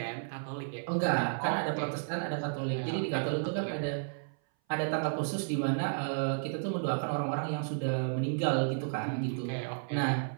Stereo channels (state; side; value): silent; left; 56 dB below the other